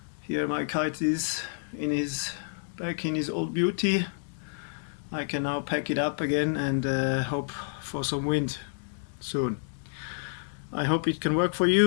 here my kite is back in his old beauty. I can now pack it up again and hope for some wind soon. I hope it can work for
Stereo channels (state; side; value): silent; right; 58 dB below the other